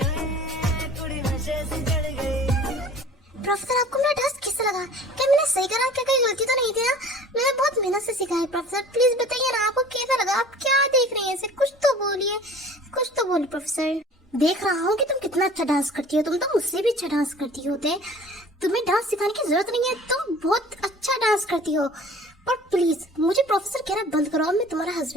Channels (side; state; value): both; normal; correlation 0.46